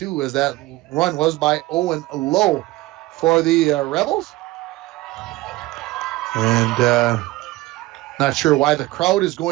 as that run was by Owen Lowe for the Rebels. And not sure why the crowd is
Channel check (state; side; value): quieter; left; 18.9 dB